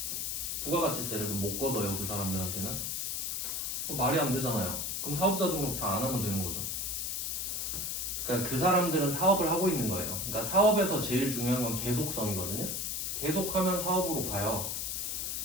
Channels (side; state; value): left; noise; hiss, 2 dB below the sound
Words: 부가가치세를 못 걷어요. 그 사람들한테는. 말이 안 되잖아요. 그럼 사업자 등록 다 안 하면 되는 거죠. 그러니까 그 사람들은 사업을 하고 있는 거예요. 그러니까 사업에서 제일 중요한 건 계속성이거든요. 계속하면 사업으로 가요.